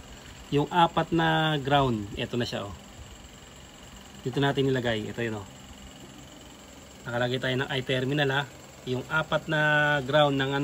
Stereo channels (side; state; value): both; identical; correlation 1.00